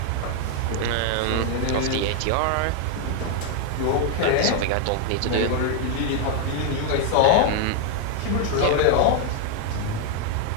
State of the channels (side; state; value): both; different; correlation 0.00